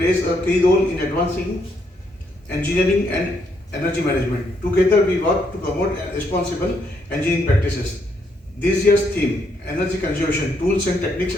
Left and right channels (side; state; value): both; normal; correlation 0.74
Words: a key role in advancing engineering and energy management. Together, we work to promote responsible engineering practices. This year's theme, Energy Conservation Tools and Techniques